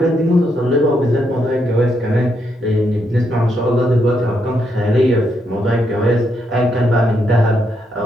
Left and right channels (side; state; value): both; normal; correlation 0.78